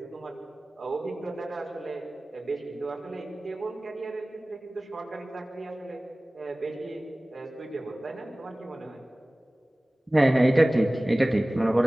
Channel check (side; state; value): both; normal; correlation 0.98